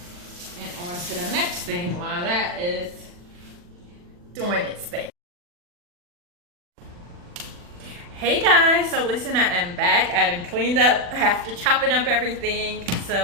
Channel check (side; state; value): left; late; 40 ms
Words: and on to the next thing while that is doing its thing. Hey guys, so listen, I am back. I done cleaned up after chopping up everything.